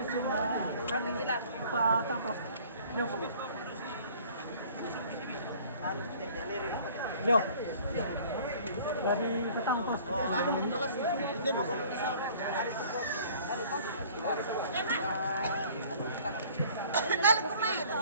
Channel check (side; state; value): both; inverted; correlation -0.51